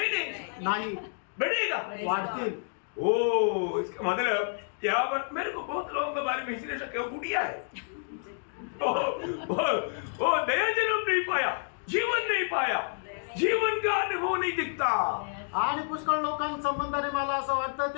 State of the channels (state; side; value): silent; right; digital silence